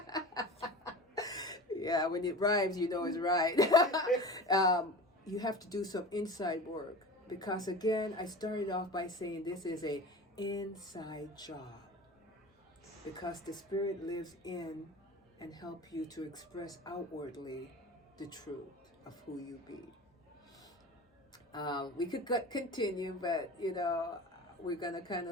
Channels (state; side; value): normal; both; correlation 0.34